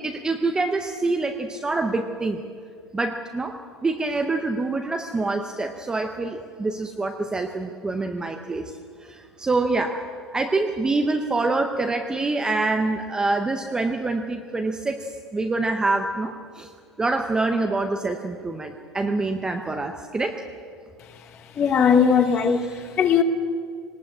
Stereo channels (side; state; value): both; normal; correlation 0.71